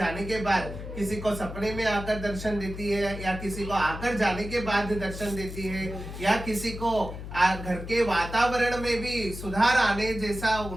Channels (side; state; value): left; noise; hum, 9 dB below the sound